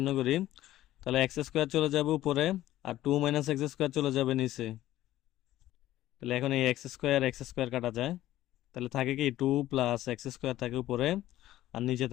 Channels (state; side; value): quieter; right; 14.3 dB